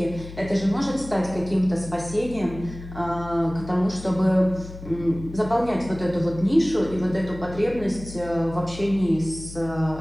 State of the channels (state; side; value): noise; left; hum, 13 dB below the sound